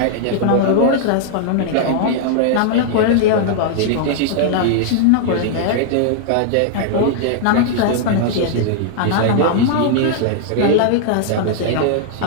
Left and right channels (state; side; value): different; both; correlation -0.01